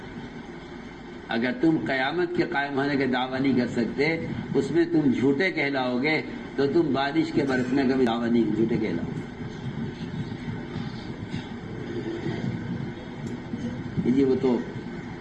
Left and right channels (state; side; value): identical; both; correlation 1.00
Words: اگر تم قیامت کے قائم ہونے کا دعویٰ نہیں کر سکتے، اس میں تم جھوٹے کہلاؤ گے، تو تم بارش کے برسنے کا بھی دعویٰ نہیں، جھوٹے کہلاؤ گے۔ جی وہ تو